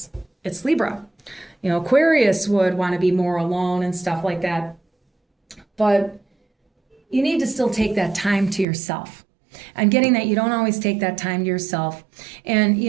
It's Libra. You know, Aquarius would want to be more alone and stuff like that. But you need to still take that time to yourself. I'm getting that you don't always take that time to yourself. And, you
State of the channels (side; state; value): left; drops out; at 8.7 s